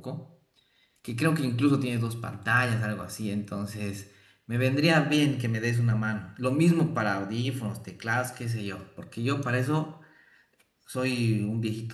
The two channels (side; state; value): both; identical; correlation 1.00